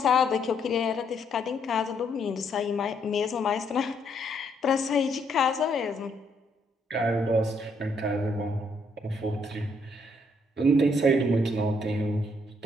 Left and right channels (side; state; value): both; normal; correlation 0.72